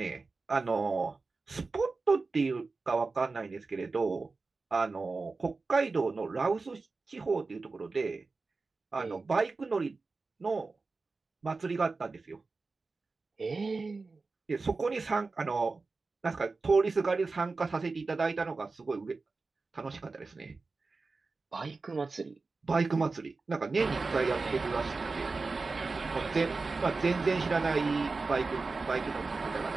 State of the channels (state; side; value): quieter; left; 3.9 dB